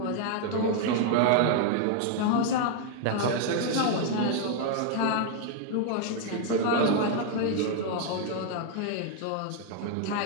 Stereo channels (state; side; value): different; both; correlation 0.00